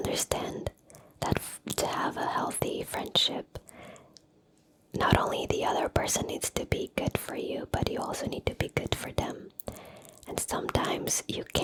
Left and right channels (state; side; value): identical; both; correlation 1.00